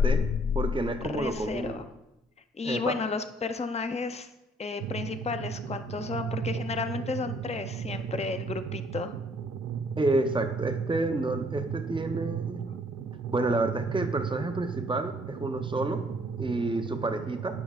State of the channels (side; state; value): both; normal; correlation 0.63